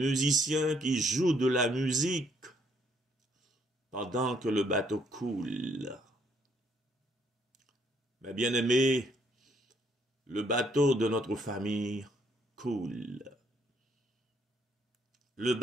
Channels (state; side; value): normal; both; correlation 0.69